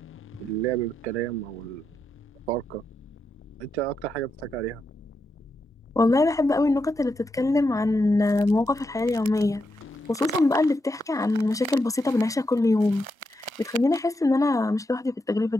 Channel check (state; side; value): normal; both; correlation 0.84